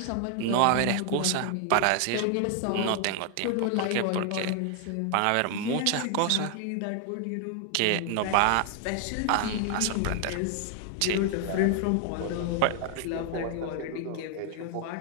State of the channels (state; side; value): different; both; correlation 0.00